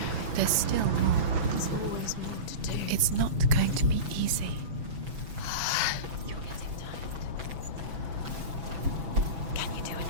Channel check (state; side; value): late; left; 6.0 ms